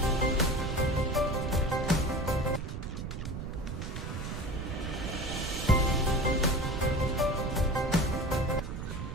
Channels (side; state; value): right; noise; rumble, 5 dB below the sound